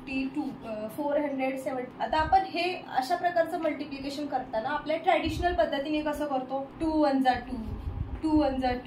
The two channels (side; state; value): both; identical; correlation 1.00